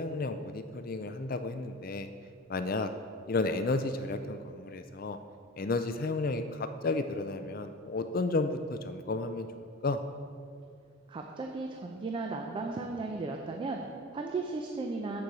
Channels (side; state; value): both; normal; correlation 0.34